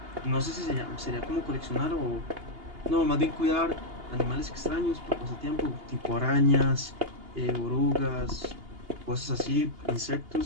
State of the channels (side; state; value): left; late; 2.8 ms